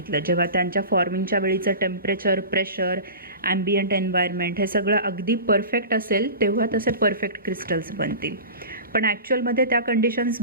जेव्हा त्यांच्या फॉर्मिंगच्या वेळीचं टेम्परेचर, प्रेशर, ॲम्बियंट एन्व्हायरमेंट हे सगळं अगदी परफेक्ट असेल तेव्हा तसे परफेक्ट क्रिस्टल्स बनतील. पण ॲक्च्युअलमध्ये त्या कंडिशन्स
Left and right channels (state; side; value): inverted; both; correlation -0.33